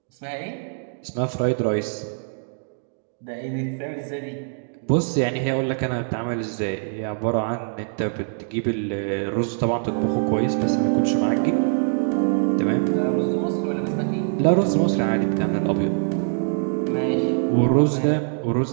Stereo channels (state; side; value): silent; left; 63 dB below the other